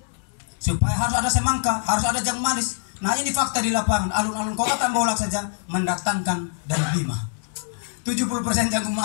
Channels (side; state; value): right; silent; digital silence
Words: supaya harus ada semangka, harus ada jagung manis. Nah ini fakta di lapangan, alun-alun kota Tembolak saja mendatangkan dari Bima. 70% jagung